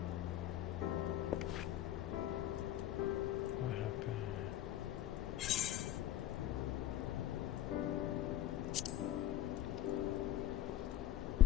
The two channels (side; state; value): right; quieter; 12.4 dB